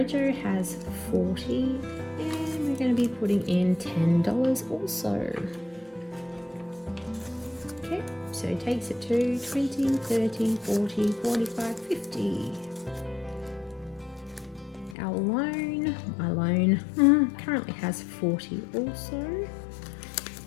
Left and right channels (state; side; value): drops out; right; at 15.0 s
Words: has 40. And we're going to be putting in $10 also. Okay, so it takes it to 20, 30, 40, 45, 50. My loan currently has 40 also.